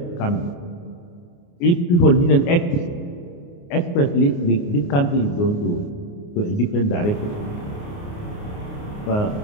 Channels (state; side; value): late; right; 29 ms